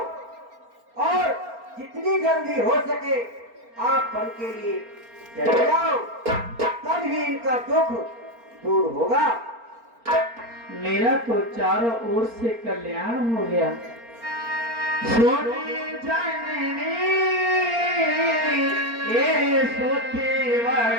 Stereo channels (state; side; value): late; left; 4.3 ms